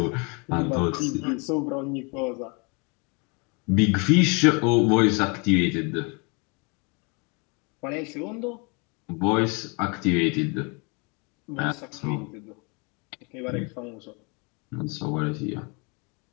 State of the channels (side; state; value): right; quieter; 31.9 dB